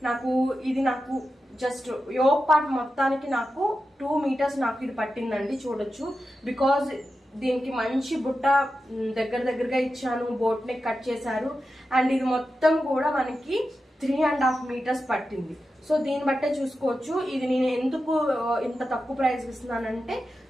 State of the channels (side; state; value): both; normal; correlation 0.91